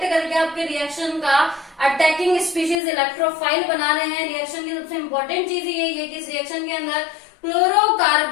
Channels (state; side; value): drops out; right; at 2.8 s